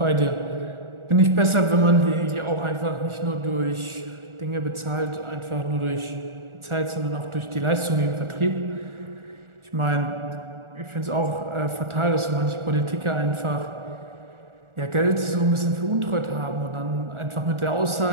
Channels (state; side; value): late; left; 1.4 ms